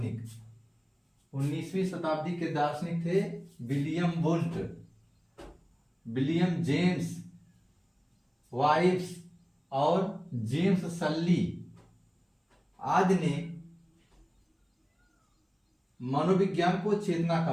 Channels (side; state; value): both; identical; correlation 1.00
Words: 19वीं शताब्दी के दार्शनिक थे William Wundt, William James vibes और जेम्स सल्ली आदि ने मनोविज्ञान को चेतना का